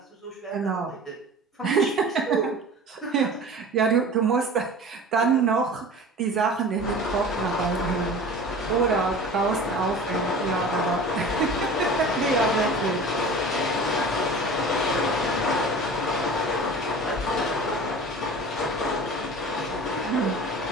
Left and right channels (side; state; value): both; normal; correlation 0.38